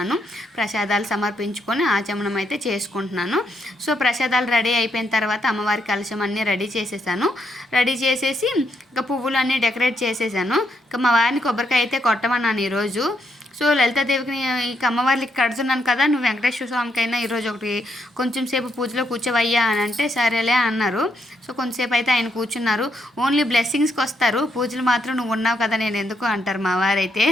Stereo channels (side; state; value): both; normal; correlation 0.77